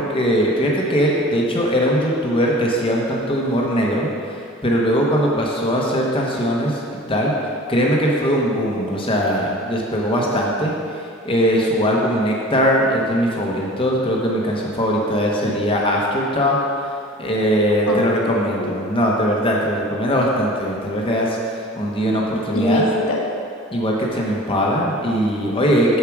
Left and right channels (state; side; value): normal; both; correlation 0.43